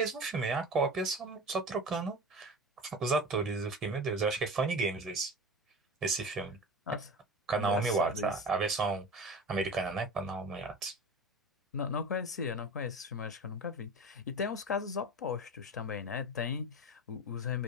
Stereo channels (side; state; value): both; normal; correlation 0.32